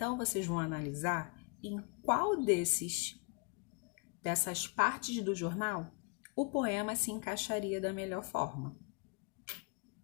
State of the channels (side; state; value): right; quieter; 35.0 dB